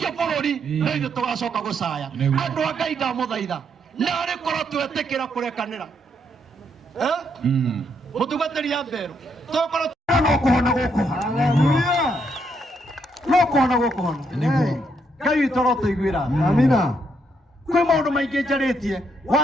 bũrũri no ithuĩ tũgacoka gũcaya andũ a Ngai ndamũthaitha narĩ korwo twetĩkĩra kũrekanĩra mũtungatĩri ya Mberũ tũkorwo no kũhona gũkũ no kũhona gũkũ hono Ngai witũ no tũiguĩra amina kwĩ maũndũ maingĩ njarĩtie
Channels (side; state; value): both; normal; correlation 0.75